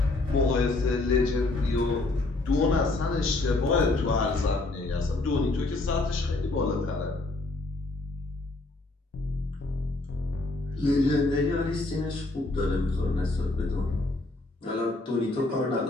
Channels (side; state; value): right; quieter; 3.0 dB